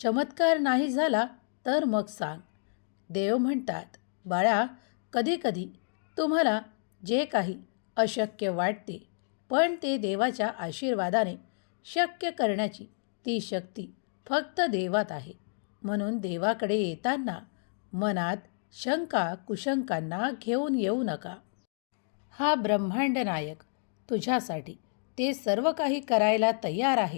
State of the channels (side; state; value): right; silent; digital silence